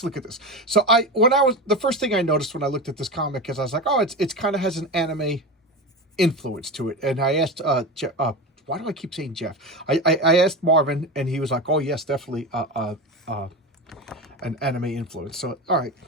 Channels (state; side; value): normal; both; correlation 0.23